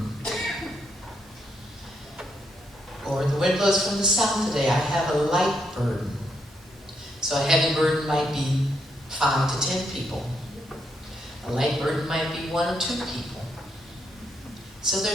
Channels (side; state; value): both; normal; correlation 0.78